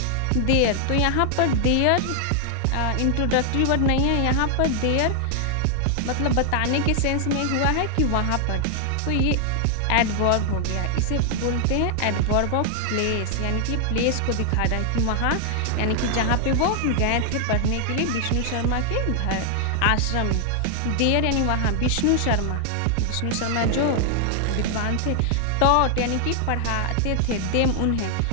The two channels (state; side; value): different; both; correlation 0.00